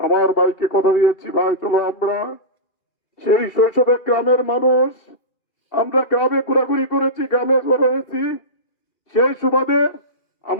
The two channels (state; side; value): late; right; 2.4 ms